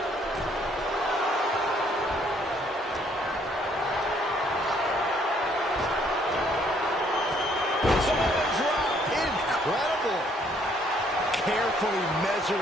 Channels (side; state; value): both; normal; correlation 0.65